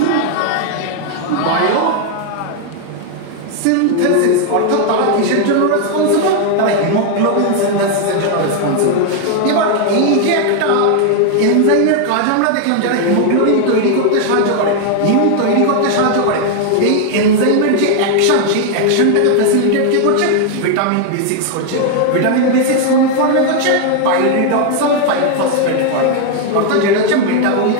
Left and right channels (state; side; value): different; both; correlation 0.00